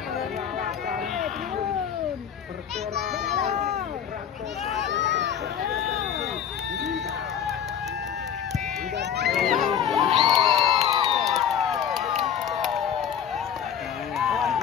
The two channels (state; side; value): quieter; right; 8.7 dB